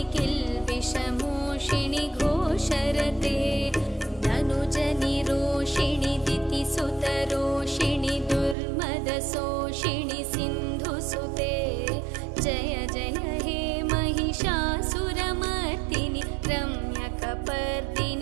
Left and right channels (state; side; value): drops out; left; at 8.6 s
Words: किल्बिषमोषिणि घोषरते धनुजनिरोषिणि दितिसुतरोषिणि दुर्मदशोषिणि सिन्धुसुते जय जय हे महिषासुरमर्दिनि